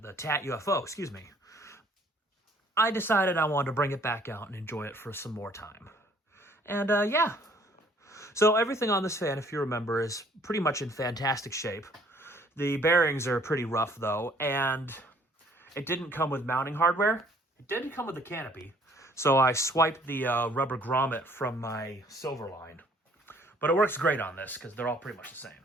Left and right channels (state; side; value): normal; both; correlation 0.60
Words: TAT UFO, excuse me, I decided I wanted to bring it back out and enjoy it for some more time. And yeah. So everything on this fan, if you remember, is pretty much in fantastic shape. The bearings are pretty rough though, and it didn't come with mounting hardware. It didn't come with the canopy. So I swiped the rubber grommet from my silver line. But it works great on this because they're all pretty much the same.